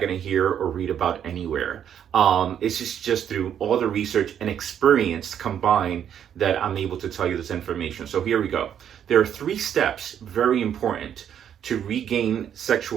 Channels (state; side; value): quieter; left; 9.2 dB